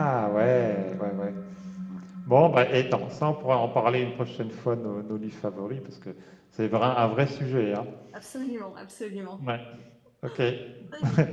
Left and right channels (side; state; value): both; identical; correlation 1.00